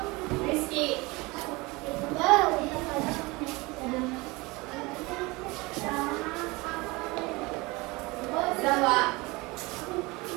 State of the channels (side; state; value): left; quieter; 23.8 dB